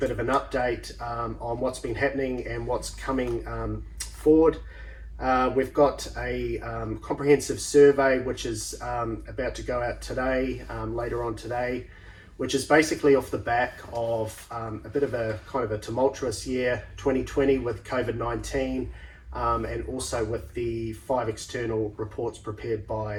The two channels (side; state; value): both; identical; correlation 1.00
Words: of an update on what's been happening and what's coming forward. We've got a comprehensive survey which is about to go out today, later on today, which is basically off the back of a bit of a kind of a tumultuous year, 2020, with COVID-19, and also with the 5 external reports prepared